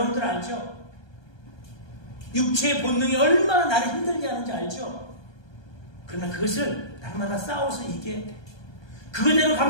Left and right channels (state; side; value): late; right; 1.2 ms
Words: 알죠? 육체의 본능이 얼마나 나를 힘들게 하는지 알죠? 그러나 그것을 날마다 싸워서 이겨야 돼. 그거대로